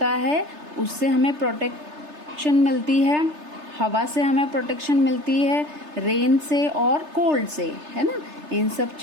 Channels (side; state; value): left; late; 3.3 ms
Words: है उससे हमें प्रोटेक्शन मिलती है, हवा से हमें प्रोटेक्शन मिलती है, रेन से और कोल्ड से, है ना. इन सब